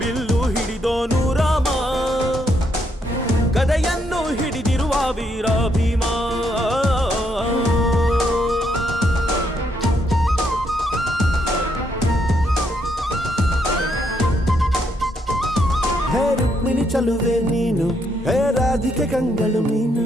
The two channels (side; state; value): both; normal; correlation 0.75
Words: ಬಿಲ್ಲು ಹಿಡಿದೋನು ರಾಮ, ಗದೆಯನ್ನು ಹಿಡಿದಿರುವ ವೀರ ಭೀಮ. ಹೇ ರುಕ್ಮಿಣಿ ಚಲುವೆ ನೀನು, ಹೇ ರಾಧಿಕೆ ಕಂಗಳು